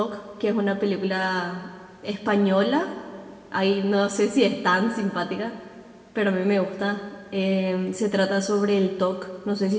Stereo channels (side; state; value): both; identical; correlation 1.00